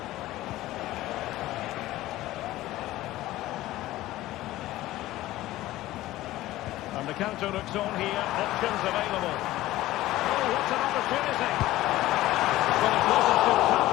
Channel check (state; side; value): quieter; right; 16.2 dB